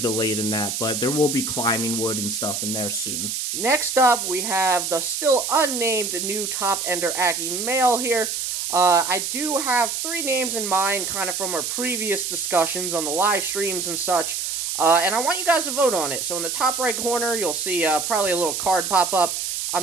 in that, but there will be climbing wood and stuff in there soon. Next up, we have the still unnamed new top Ender Ackee male here. I do have 3 names in mind, kind of from our previous discussions on the live streams and such. And I want you guys to vote on it. So in the top right corner, you'll see probably a little card pop up.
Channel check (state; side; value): noise; right; hiss, 2 dB below the sound